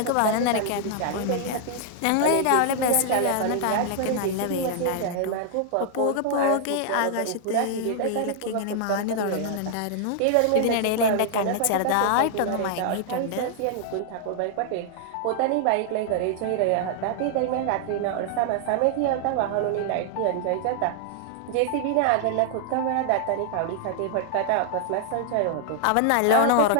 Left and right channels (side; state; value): both; different; correlation -0.01